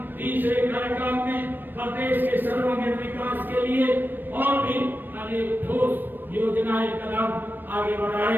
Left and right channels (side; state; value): left; late; 0.093 ms